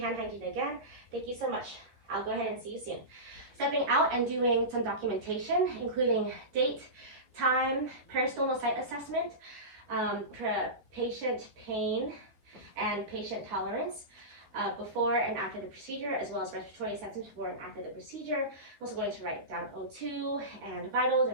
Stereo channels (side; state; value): left; late; 13 ms